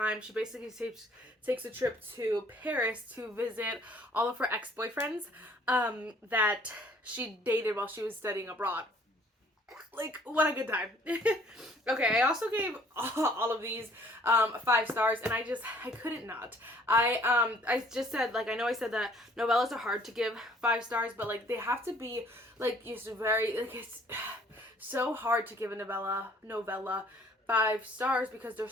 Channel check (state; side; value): normal; both; correlation 0.58